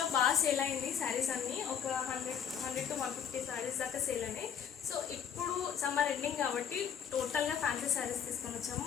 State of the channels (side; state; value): right; quieter; 8.1 dB